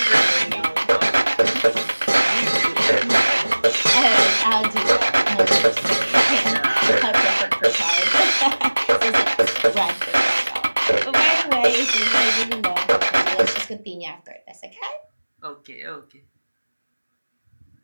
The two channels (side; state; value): both; inverted; correlation -1.00